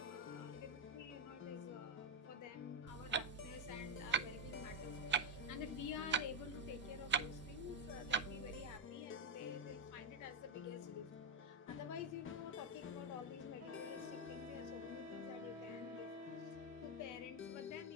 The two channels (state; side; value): normal; both; correlation 0.07